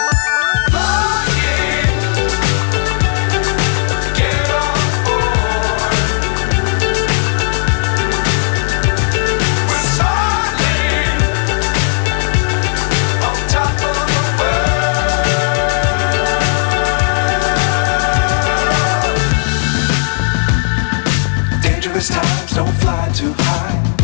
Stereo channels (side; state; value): right; silent; digital silence